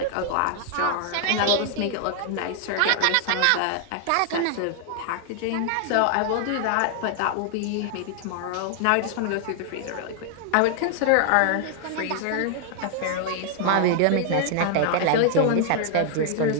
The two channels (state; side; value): different; both; correlation 0.00